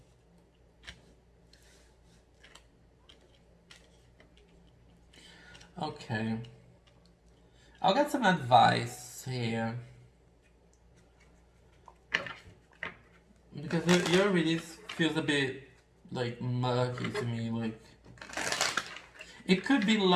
Okay. I'll get some advice here. Because your release feels a bit like murky to me. Like it could be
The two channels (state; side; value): identical; both; correlation 1.00